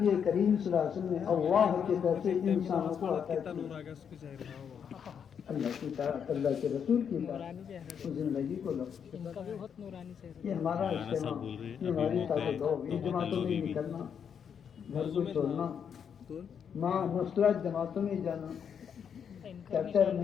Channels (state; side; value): quieter; right; 7.6 dB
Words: کریم صلی اللہ علیہ وسلم نے اللہ کی طرف سے انسانوں کو عطا کی، اللہ کی طرف، اللہ کے رسول کی طرف اس زندگی کو لو، ان کا بھی بہت نورانی چہرہ یہ ہمارا اجتماع، یہ ہماری طاقت ہو، یہ جماعتوں میں نکلنا، گھر کو چھوڑنا، ماں مسلح جماعتوں میں جانا، ہے، ان کا چرچر